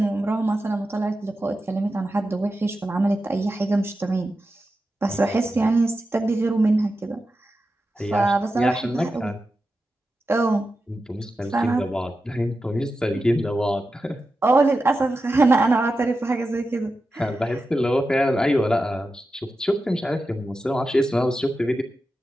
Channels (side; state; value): both; normal; correlation 0.91